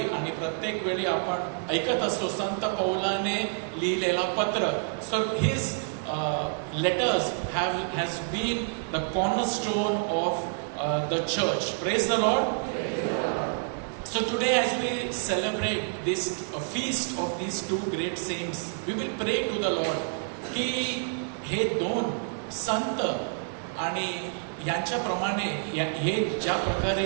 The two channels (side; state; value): left; silent; digital silence